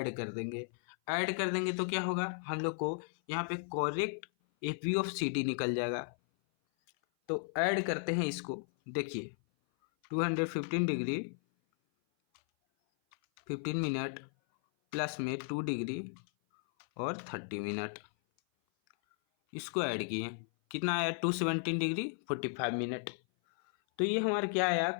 कर देंगे। ऐड कर देंगे तो क्या होगा? हम लोग को यहाँ पे correct F B of C D निकल जाएगा। तो ऐड करते हैं इसको, देखिए 215 डिग्री 15 मिनट प्लस में 2 डिग्री और 30 मिनट, इसको ऐड किए, कितना आया? 217 डिग्री 45 मिनट। तो ये हमारा क्या आया?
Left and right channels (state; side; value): silent; right; 54 dB below the other